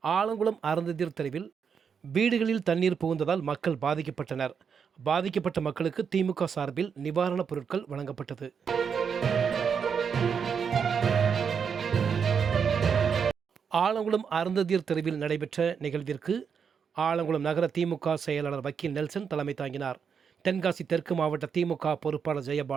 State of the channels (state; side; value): quieter; left; 6.7 dB